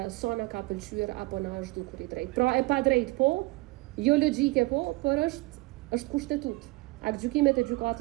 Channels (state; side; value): quieter; left; 23.2 dB